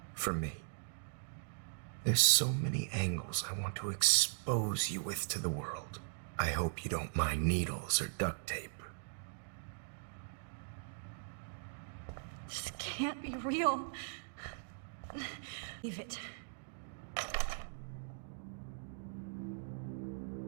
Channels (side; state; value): left; silent; digital silence